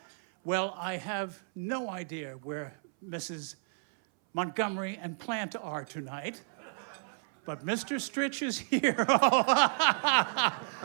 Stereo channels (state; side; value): silent; left; 57 dB below the other